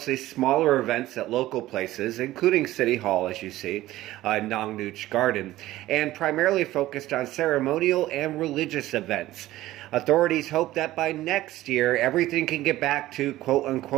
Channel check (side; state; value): left; quieter; 15.9 dB